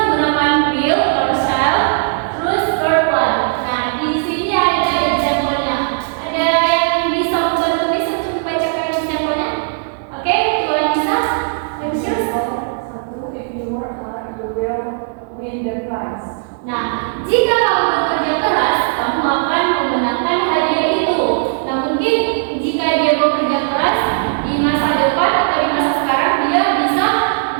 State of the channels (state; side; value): silent; left; digital silence